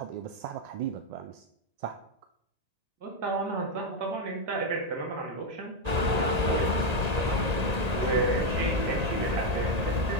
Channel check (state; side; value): late; left; 1.8 ms